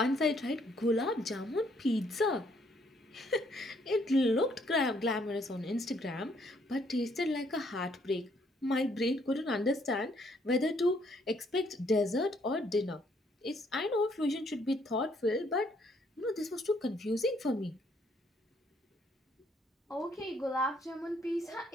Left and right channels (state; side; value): normal; both; correlation 0.68